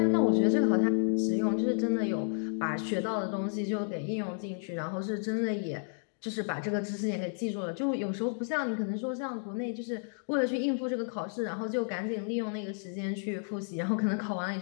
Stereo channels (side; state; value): right; silent; digital silence